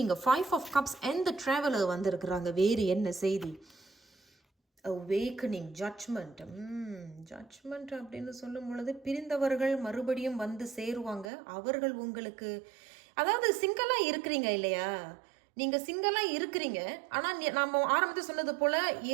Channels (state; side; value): drops out; left; at 11.3 s